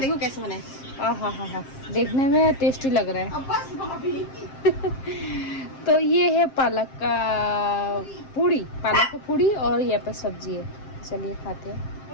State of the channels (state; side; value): late; right; 7.5 ms